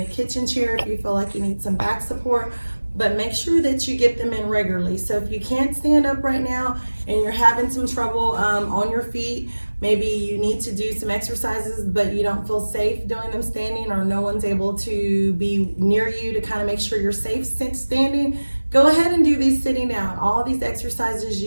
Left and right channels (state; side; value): inverted; both; correlation -1.00